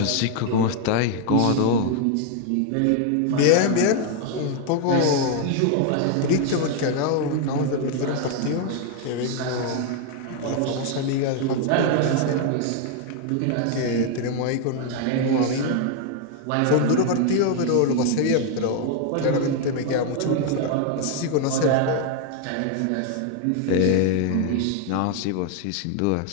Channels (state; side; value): different; both; correlation 0.00